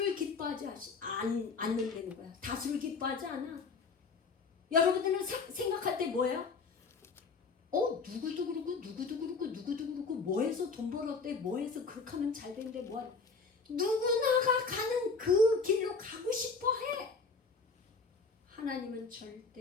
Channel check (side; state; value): right; quieter; 4.5 dB